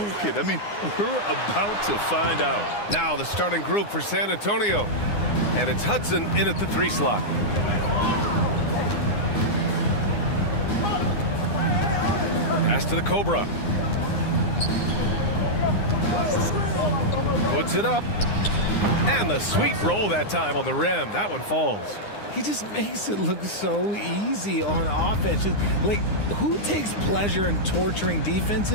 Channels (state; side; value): late; right; 9.7 ms